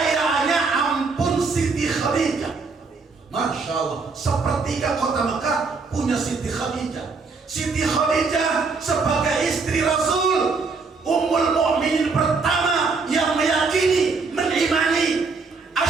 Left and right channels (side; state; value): left; quieter; 4.4 dB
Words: ampun Siti Khadijah. Masya Allah, sepertiga kota Mekah punya Siti Khadijah. Siti Khadijah sebagai istri Rasul, Ummul Mukminin pertama yang meyakini, mengimani,